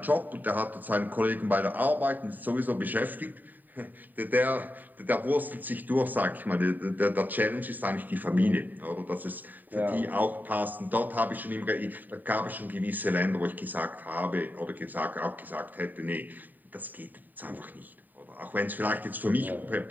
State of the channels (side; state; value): left; late; 0.087 ms